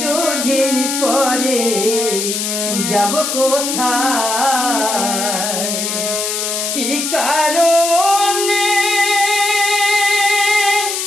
দুদিন পরে যাব কোথায়, কি কারণে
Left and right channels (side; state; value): left; noise; hiss, 2 dB below the sound